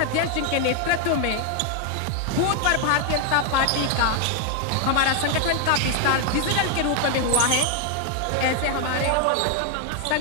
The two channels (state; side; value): different; both; correlation 0.00